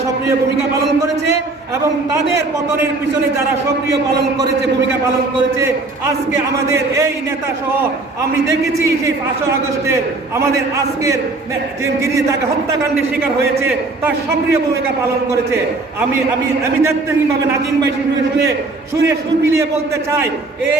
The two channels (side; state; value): left; quieter; 3.3 dB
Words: সক্রিয় ভূমিকা পালন করেছে এবং তাদের পতনের পিছনে যারা সক্রিয় ভূমিকা পালন করেছে, আজকে আমাদের এই নেতা সহ আমি দেখেছি সেই 5 আগস্টের আমাদের আজকের যিনি তাকে হত্যাকাণ্ডের শিকার হয়েছে তার সক্রিয় ভূমিকা পালন করেছে। আমি আমি আমি দায়িত্বহীনভাবে নাজিম ভাই শুনে সুর মিলিয়ে বলতে চাই,